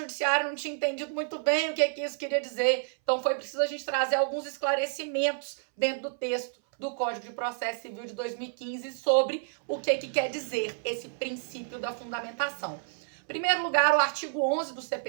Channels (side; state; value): left; silent; 58 dB below the other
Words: não tinha entendido muito bem o que isso queria dizer, então foi preciso a gente trazer alguns esclarecimentos dentro do texto do Código de Processo Civil de 2015 sobre o que quer dizer esse princípio da fundamentação. Em primeiro lugar, o artigo 11 do